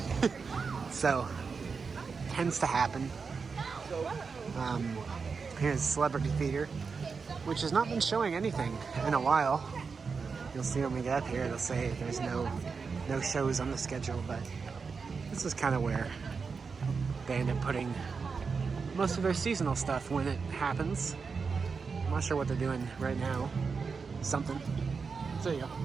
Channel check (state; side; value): quieter; left; 5.1 dB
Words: So, tends to happen. Here's Celebrity Theater, which has not been showing anything in a while. You'll see when we get up here, it'll say there's no shows on the schedule, but this is kind of where they end up putting most of their seasonal stuff when it happens. I'm not sure what they're doing right now. Something. So there you go.